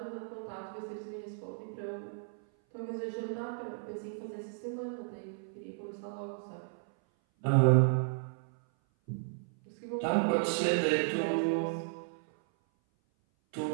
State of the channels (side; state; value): left; silent; 55 dB below the other